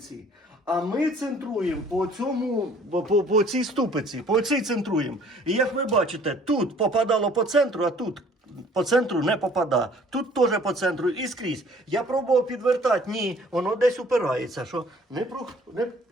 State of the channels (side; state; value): both; normal; correlation 0.55